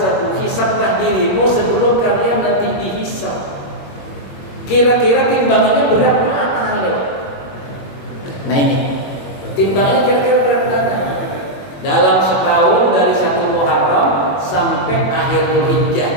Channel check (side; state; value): right; late; 21 ms